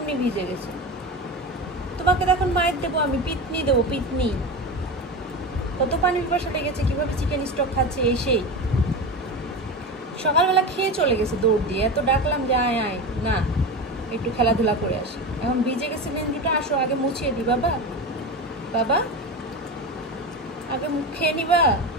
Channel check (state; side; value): normal; both; correlation 0.24